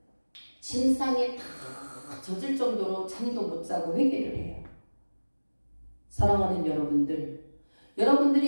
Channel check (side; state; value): both; inverted; correlation -1.00